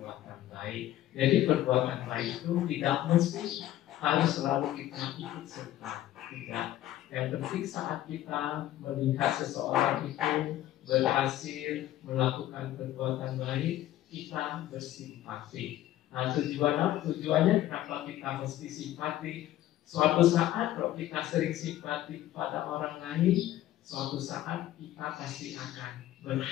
baik. Jadi perbuatan baik itu tidak mesti harus selalu kita ikut serta, tidak. Yang penting saat kita melihat seseorang itu berhasil melakukan perbuatan baik, kita bersimpati. Nah, tujuannya kenapa kita mesti simpati? Suatu saat kalau kita sering simpati kepada orang lain, suatu saat kita pasti akan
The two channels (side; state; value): right; quieter; 13.8 dB